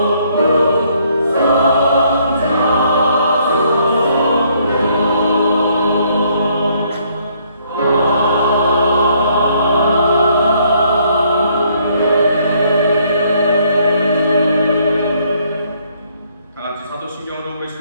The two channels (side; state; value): both; inverted; correlation -0.67